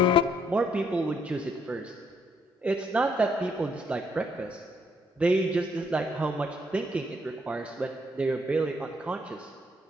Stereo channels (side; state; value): both; normal; correlation 0.70